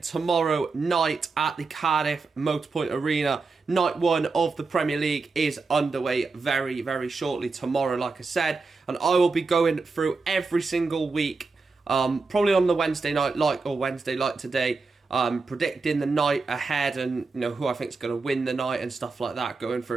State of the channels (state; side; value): quieter; left; 4.1 dB